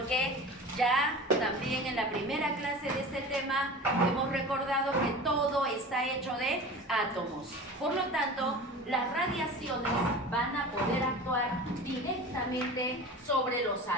ya también en la primera clase de este tema hemos recordado que todo está hecho de átomos. Por lo tanto, las radiaciones van a poder actuar directamente sobre los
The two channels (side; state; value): both; normal; correlation 0.35